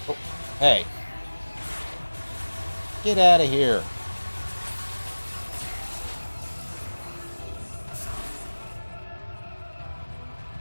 Oh, hey. Get out of here.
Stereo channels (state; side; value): inverted; both; correlation -1.00